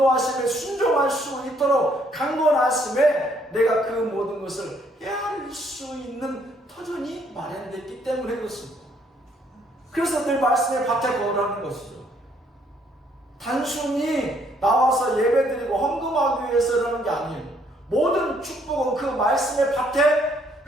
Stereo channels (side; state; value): both; normal; correlation 0.67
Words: 순종할 수 있도록 강권하심에 내가 그 모든 것을 헤아릴 수 있는 터전이 마련됐기 때문에 그렇습니다. 그래서 늘 말씀의 밭에 거하라는 것이죠. 단순히 나와서 예배드리고 헌금하기 위해서라는 게 아니에요. 모든 축복은 그 말씀의 밭에